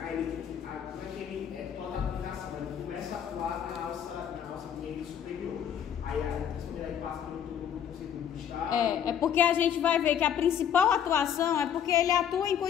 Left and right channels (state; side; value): quieter; right; 8.9 dB